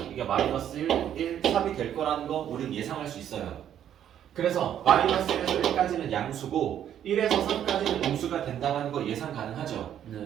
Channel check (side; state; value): left; quieter; 10.2 dB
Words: 이게 마이너스 1, 3이 될 거라는 거 우린 예상할 수 있어요. 그래서 마이너스 1에서 1까지는 양수고 1에서 3까지는 음수가 된다는 거 예상 가능하죠. 네.